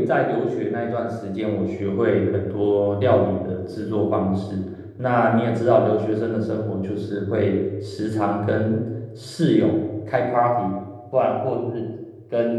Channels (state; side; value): identical; both; correlation 1.00